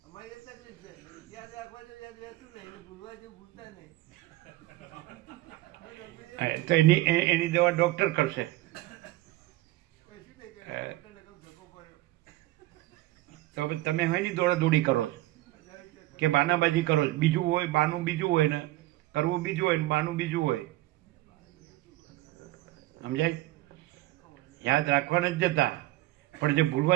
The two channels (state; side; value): quieter; left; 17.3 dB